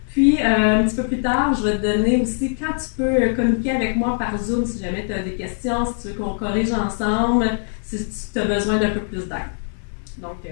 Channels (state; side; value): silent; right; 63 dB below the other